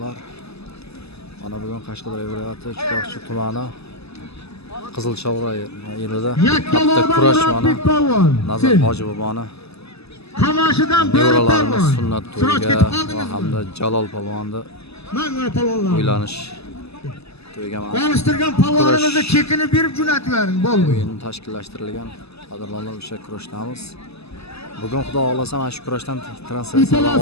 Mana bugun Qashqadaryo viloyati Chiroqchi tumani Qizilshavra yerida katta kurash mana Nazar Hoji boboni nevaralarimiz sunnat to'yiga va hamda Jalol polvonni uylanish to'yiga Konuşturgan polvonimizni chekini berib jo'natib bering, bo'ldi. O'yin tashkillashtirilgan. Qadrdonlar, o'sha kurashdamiz. Bugun xudo xolasa mana shu kurashdan translyatsiyalar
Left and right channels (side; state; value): right; late; 0.79 ms